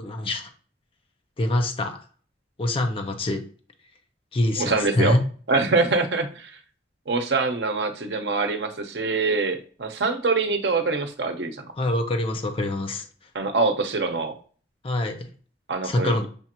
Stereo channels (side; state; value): both; normal; correlation 0.24